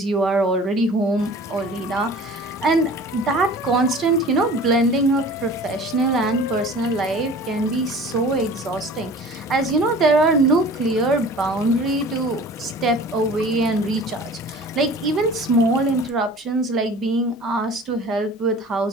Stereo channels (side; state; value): both; normal; correlation 0.43